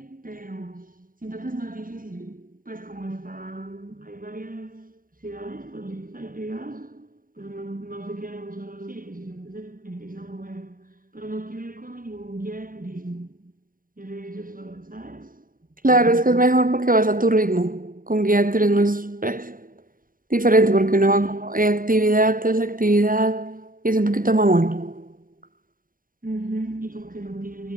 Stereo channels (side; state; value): left; late; 0.41 ms